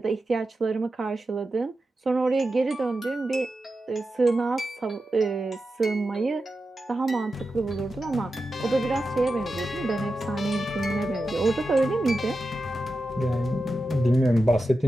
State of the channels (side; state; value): both; normal; correlation 0.91